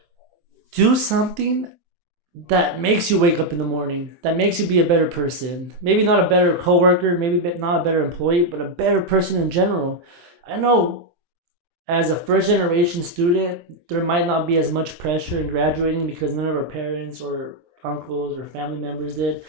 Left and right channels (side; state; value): left; late; 23 ms